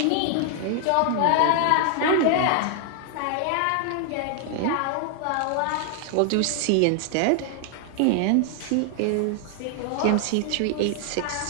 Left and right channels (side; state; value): both; different; correlation 0.00